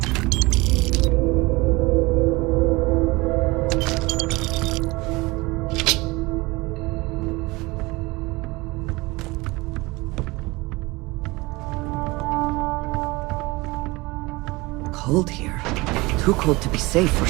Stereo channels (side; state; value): left; quieter; 22.9 dB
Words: Cold here. Too cold to be safe for